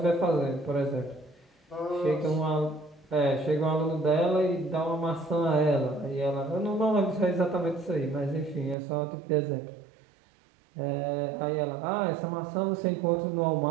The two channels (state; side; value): drops out; left; at 8.8 s